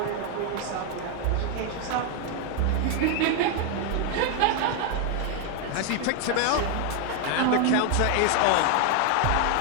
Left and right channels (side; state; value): both; different; correlation 0.01